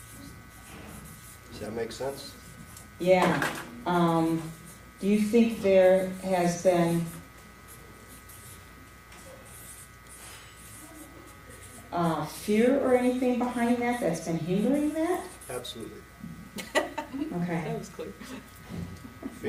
Does that make sense? Yeah. Do you think there has been fear or anything behind that that's been hindering that? Absolutely. Okay. That was clear.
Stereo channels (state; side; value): identical; both; correlation 1.00